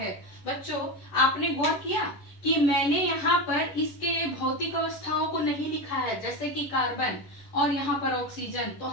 बच्चों आपने गौर किया कि मैंने यहाँ पर इसके भौतिक अवस्थाओं को नहीं लिखा है, जैसे कि कार्बन और यहाँ पर ऑक्सीजन। तो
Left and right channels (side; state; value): right; late; 10 ms